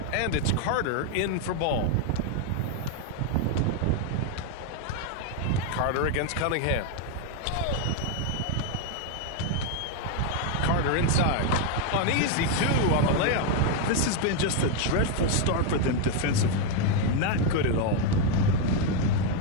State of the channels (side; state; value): both; different; correlation 0.01